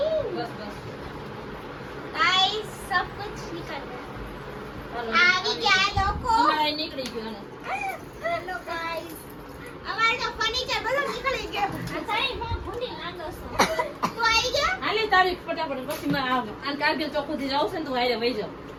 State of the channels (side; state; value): both; identical; correlation 1.00